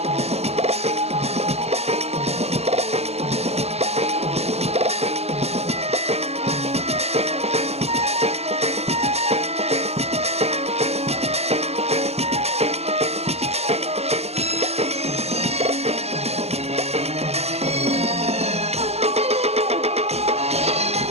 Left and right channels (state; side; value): late; left; 0.30 ms